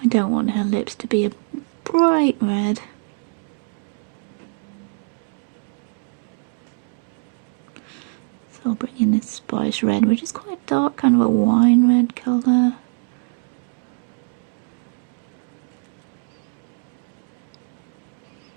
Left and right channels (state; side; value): quieter; left; 38.0 dB